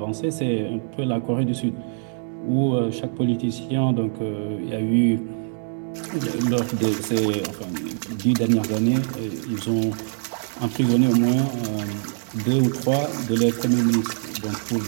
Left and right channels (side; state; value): left; silent; 60 dB below the other